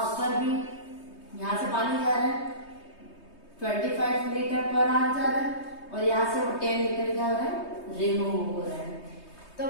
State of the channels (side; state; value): right; late; 3.2 ms